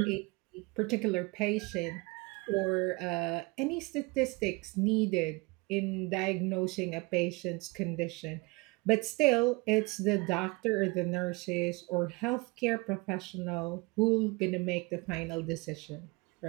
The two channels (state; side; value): quieter; left; 25.8 dB